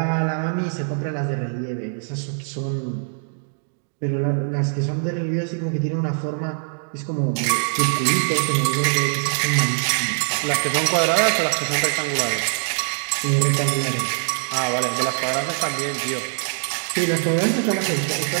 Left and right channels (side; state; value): left; silent; digital silence